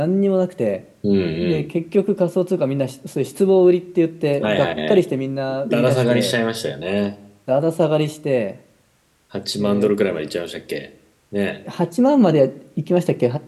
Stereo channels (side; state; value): both; identical; correlation 1.00